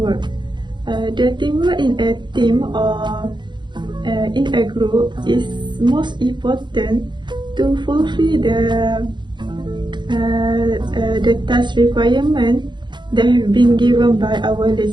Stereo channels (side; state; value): left; late; 0.22 ms